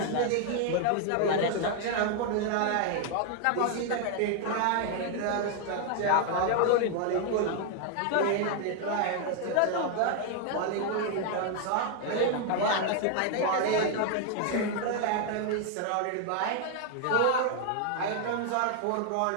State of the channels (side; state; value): both; different; correlation 0.00